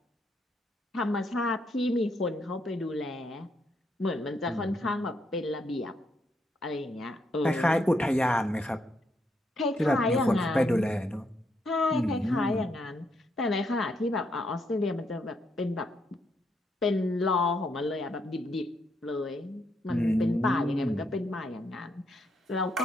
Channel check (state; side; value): normal; both; correlation 0.77